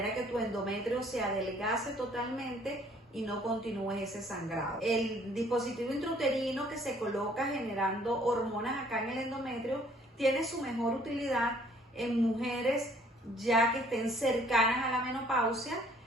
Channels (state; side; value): normal; both; correlation 0.59